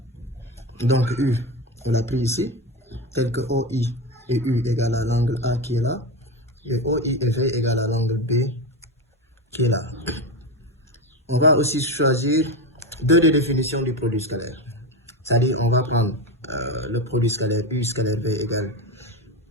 Donc, U, on l'a pris ici, tel que OI et U égale à l'angle A qui est là, et OI et V égale à l'angle B qui est là. On va aussi choisir deux des définitions du produit scalaire. C'est-à-dire, on va prendre le produit scalaire U scalaire V égale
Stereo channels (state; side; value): normal; both; correlation 0.18